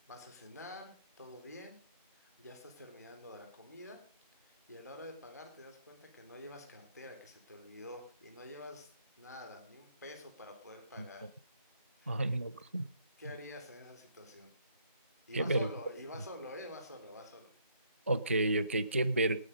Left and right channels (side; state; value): both; inverted; correlation -0.67